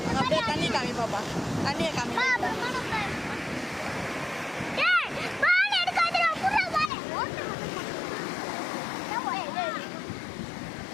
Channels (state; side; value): drops out; right; at 6.9 s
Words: அப்படியே தண்ணி காமி பாப்பா, தண்ணியை காமி.